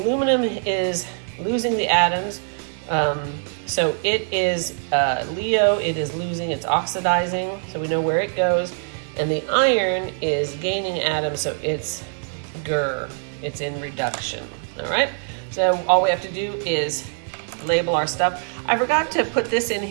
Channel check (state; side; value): silent; left; 60 dB below the other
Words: is losing the atoms, so it is Leo, it is losing, it's oxidizing, so we know where it goes, and the iron is gaining atoms, so it's Gur, it's in reduction, all right? So all we have to do is label our stuff. I forgot to put this in